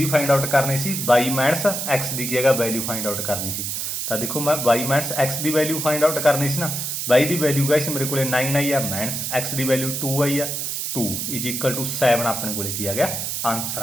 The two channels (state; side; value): noise; right; hiss, 3 dB below the sound